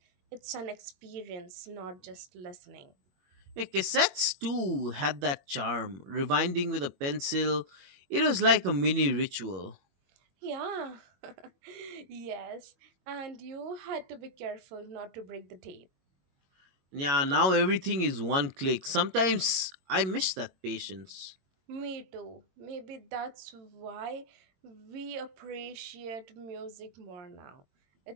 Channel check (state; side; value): late; left; 21 ms